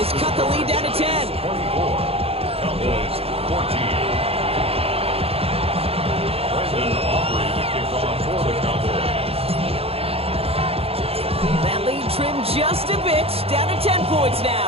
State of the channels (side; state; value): left; late; 0.28 ms